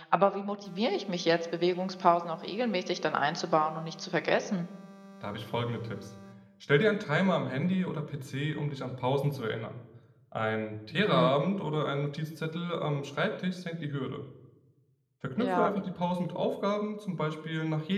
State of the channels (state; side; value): identical; both; correlation 1.00